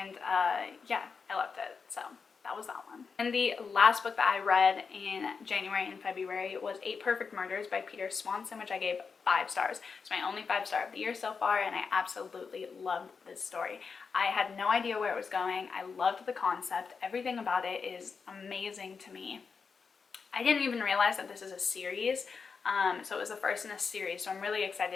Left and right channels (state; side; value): quieter; right; 5.4 dB